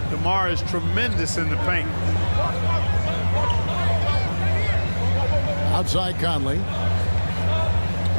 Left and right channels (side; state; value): both; inverted; correlation -1.00